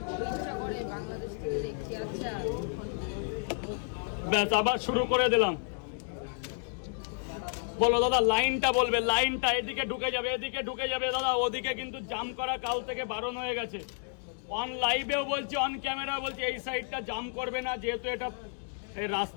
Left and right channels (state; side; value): silent; right; 57 dB below the other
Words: ব্যাস আবার শুরু করে দিলাম। বলো দাদা, লাইনটা বলবে, লাইনটা এদিকে ঢুকে যাবে, এদিকে ঢুকে যাবে দাদা। ওদিকে কিন্তু জাম করা কাল থেকে বারণ হয়ে গেছে। অন লাইভেও বলছি, অন ক্যামেরা বলছি, এই সাইডটা জাম করবে না, যেহেতু এটা এই